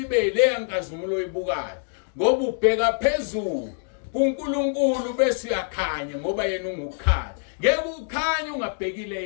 le nkazimulo oyibukayo ngoba ubheka phezulu kuNkulunkulu bese uyakhanya ngoba yena ungukhanya. Ngeke ukhanye ungabhekile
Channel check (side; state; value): right; silent; digital silence